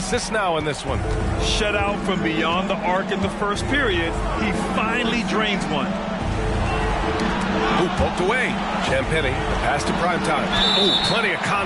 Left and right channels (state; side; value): identical; both; correlation 1.00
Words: now in this one. Shut out from beyond the arc in the first period. He finally drains one. Ooh, poked away. Champagnie, the pass to Primetime. Ooh, plenty of